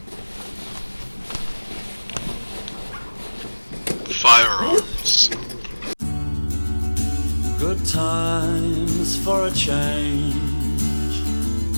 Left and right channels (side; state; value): both; inverted; correlation -1.00